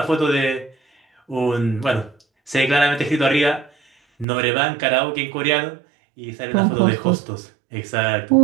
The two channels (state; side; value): drops out; left; at 4.2 s